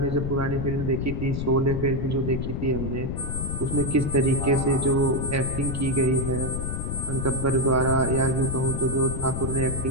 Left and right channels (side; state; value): left; noise; rumble, 3 dB below the sound